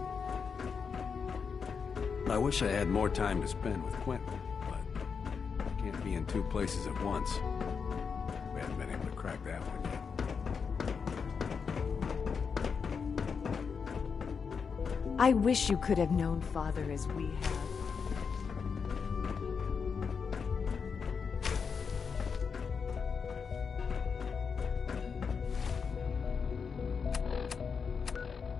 I wish I had more time to spend with Quentin, but I can't be in two places at once. We haven't been able to crack that one yet. I wish you could have known Father as we have.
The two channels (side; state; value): right; quieter; 5.9 dB